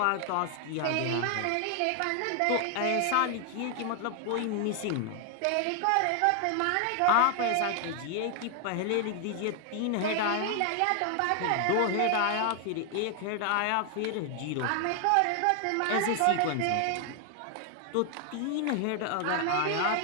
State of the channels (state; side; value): different; both; correlation 0.00